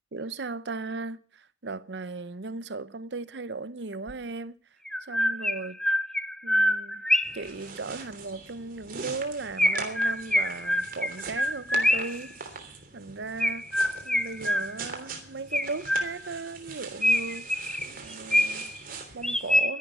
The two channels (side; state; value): both; normal; correlation 0.73